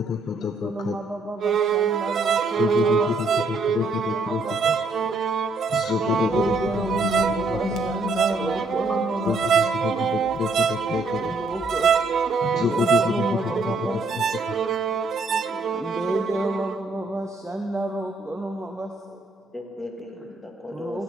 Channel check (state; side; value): quieter; left; 3.1 dB